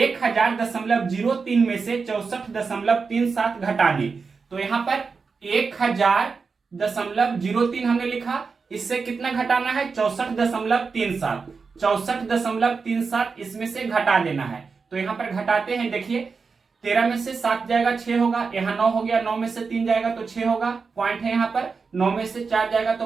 में से 64.37 घटाने। तो यहां पर 1000.03 हमने लिखा, इससे कितना घटाना है 64.37, 64.37 इसमें से घटा देना है। तो यहां पर घटाते हैं, देखिए 13 में से 7 जाएगा 6 होगा, यहाँ 9 हो गया, 9 में से 3 जाएगा तो 6 होगा, पॉइंट है यहाँ पर। 9 में से 4 जाएगा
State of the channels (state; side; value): quieter; left; 4.9 dB